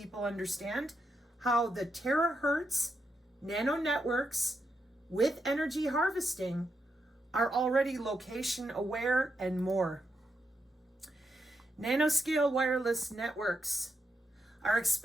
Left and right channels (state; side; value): normal; both; correlation 0.83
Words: understand how the terahertz nanonetworks with energy harvesting are already location aware and more. Nanoscale wireless networks are